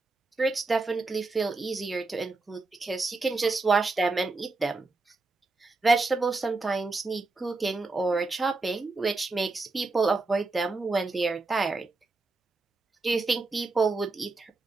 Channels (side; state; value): left; quieter; 3.5 dB